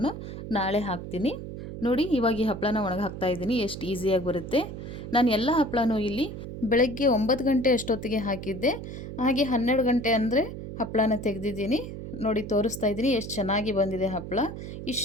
ನಾಳೆ ಹಾಕ್ತೀನಿ ನೋಡಿ. ಇವಾಗ ಈ ಹಪ್ಪಳನ ಒಣಗಿ ಹಾಕ್ತಾಯಿದ್ದೀನಿ. ಎಷ್ಟು ಈಸಿಯಾಗಿ ಬರುತ್ತೆ. ನಾನು ಎಲ್ಲ ಹಪ್ಪಳನೂ ಇಲ್ಲಿ ಬೆಳಗ್ಗೆ 9 ಗಂಟೆ ಅಷ್ಟೊತ್ತಿಗೆ ಹಾಕಿದ್ದೆ. ಹಾಗೆ 12 ಗಂಟೆ ಅಂದರೆ ಹಪ್ಪಳನ ತೆಗೆದಿದ್ದೀನಿ ನೋಡಿ. ತೋರಿಸ್ತಾ ಇದ್ದೀನಿ ಎಷ್ಟು ಚೆನ್ನಾಗಿ ಬಂದಿದೆ ಹಪ್ಪಳ.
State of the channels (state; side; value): noise; right; hum, 9 dB below the sound